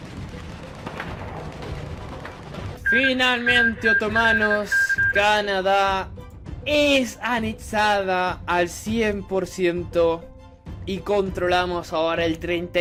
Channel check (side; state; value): both; identical; correlation 1.00